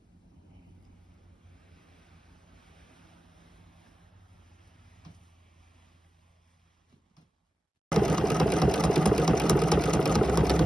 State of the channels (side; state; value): both; normal; correlation 0.94